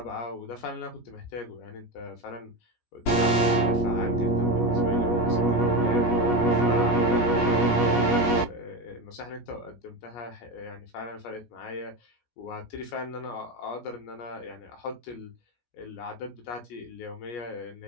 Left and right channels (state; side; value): late; right; 17 ms